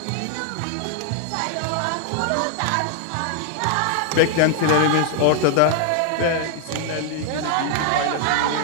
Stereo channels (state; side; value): different; both; correlation 0.00